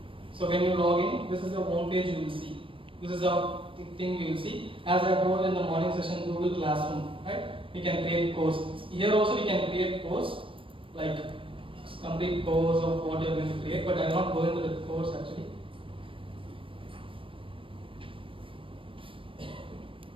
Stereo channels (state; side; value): late; left; 0.25 ms